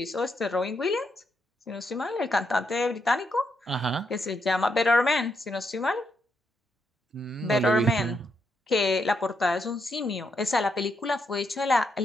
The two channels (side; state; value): both; normal; correlation 0.79